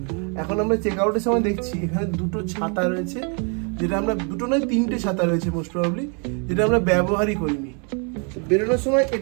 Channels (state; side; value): quieter; left; 37.1 dB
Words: এখন আমরা চেক আউটের সময় দেখছি এখানে দুটো ছাতা রয়েছে, যেটা আমরা দুটো নয় 3টে ছাতা রয়েছে মোস্ট প্রবাবলি, যেটা আমরা ব্যবহারই করিনি। বেরোনোর সময়